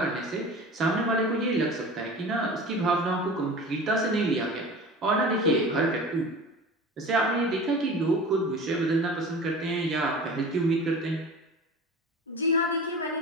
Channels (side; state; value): both; normal; correlation 0.36